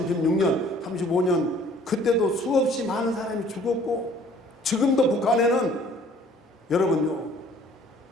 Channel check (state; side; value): normal; both; correlation 0.55